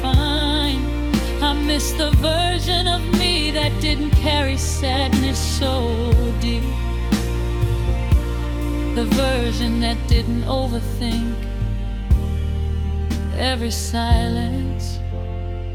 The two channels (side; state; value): both; identical; correlation 1.00